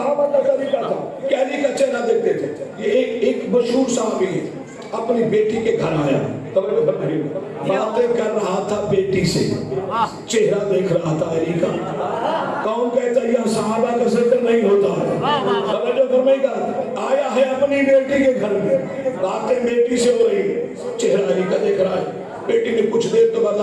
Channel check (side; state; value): both; identical; correlation 1.00